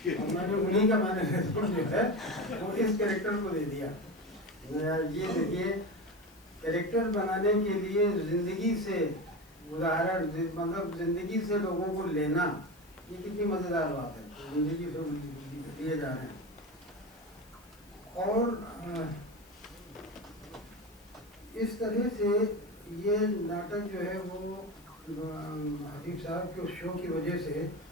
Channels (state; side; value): noise; left; hiss, 28 dB below the sound